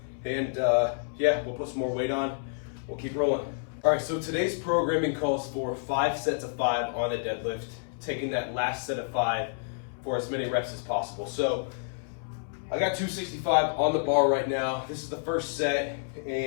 And yeah, we'll put some more weight on. We'll keep rolling. All right, so today's programming calls for 5 sets of 5 on a deadlift, taking that last set of 5 for as many reps as possible. So I got 265 on the bar right now. This is the first set,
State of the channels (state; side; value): silent; right; 59 dB below the other